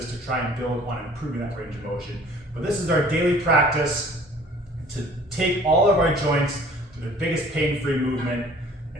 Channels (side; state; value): both; normal; correlation 0.51